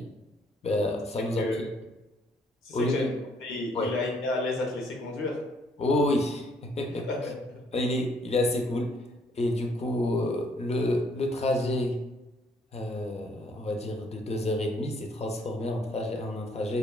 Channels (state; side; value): normal; both; correlation 0.66